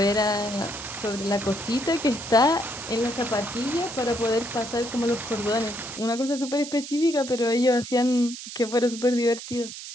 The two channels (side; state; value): right; noise; hiss, 11 dB below the sound